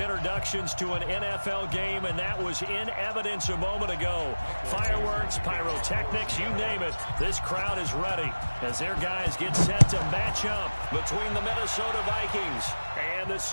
to an NFL game, and that was in evidence a moment ago. Fireworks, pyrotechnics, you name it. This crowd is ready as their guys get set to match up between the Minnesota Vikings and the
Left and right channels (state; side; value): inverted; both; correlation -1.00